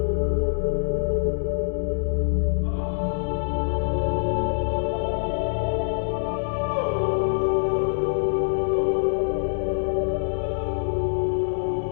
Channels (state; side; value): silent; right; digital silence